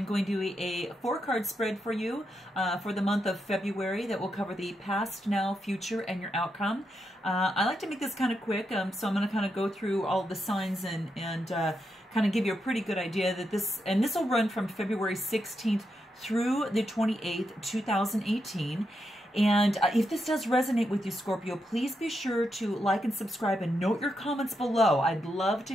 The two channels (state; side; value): normal; both; correlation 0.83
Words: going to do a 4-card spread for you for the month of February that will cover the past, now, future, and your outcome. I like to make this kind of quick, so I'm going to kind of go through all the signs and kind of give you a pretty good idea that this will run from February 16th through the 28th, 2018. And if this does resonate with you, Scorpio, please be sure to like and subscribe and note your comments below. I'd love to